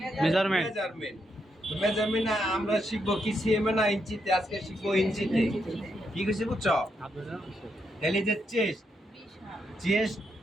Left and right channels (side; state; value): both; normal; correlation 0.80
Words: মেজারমেন্ট। মেজারমেন্ট। তো মেজারমেন্ট আমরা শিখবো কি সিএম না ইঞ্চিতে? আজকে শিখবো ইঞ্চিতে। কি কইছি বুঝছো? তাহলে যে চেস্ট